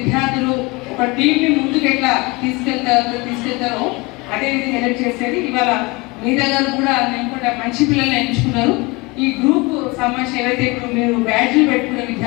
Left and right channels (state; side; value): quieter; right; 24.7 dB